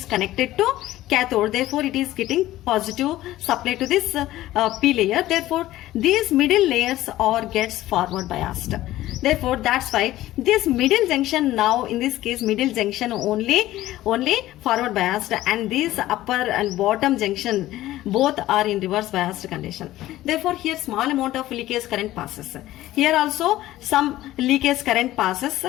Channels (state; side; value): quieter; right; 15.3 dB